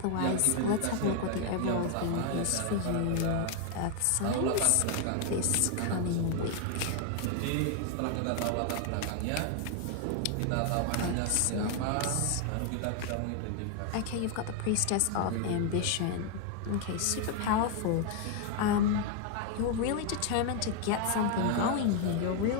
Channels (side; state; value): both; different; correlation 0.00